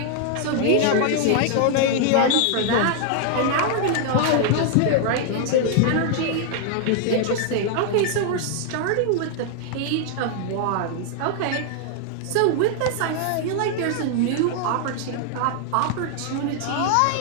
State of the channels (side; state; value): both; different; correlation 0.00